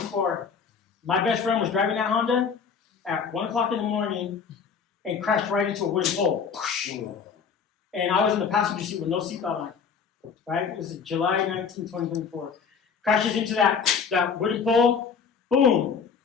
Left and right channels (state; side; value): quieter; right; 6.1 dB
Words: my best friend was driving that Honda at 1 o'clock in the morning and crashed right into a wooden pole. And I was in the passenger seat with no seatbelt on, right? It was July 19, 2024. Crashes into that wooden pole, boom.